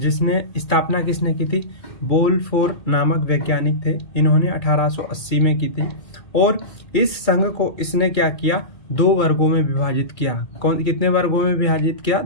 स्थापना किसने की थी? बोलफोर नामक वैज्ञानिक थे। इन्होंने 1880 में की थी और इस संघ को इसने क्या किया? 2 वर्गों में विभाजित किया। कितने वर्गों में विभाजित किया?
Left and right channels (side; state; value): right; late; 2.3 ms